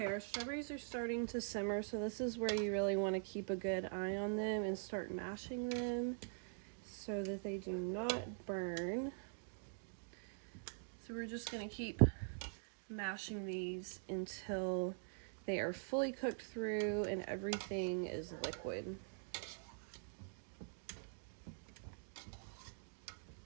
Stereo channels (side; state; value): left; silent; digital silence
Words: our strawberries are starting to simmer, so this is where you really want to keep a good eye on them and start mashing them so that they do not burn. So we're just going to keep mashing these until they are fully cooked through and everything is liquid.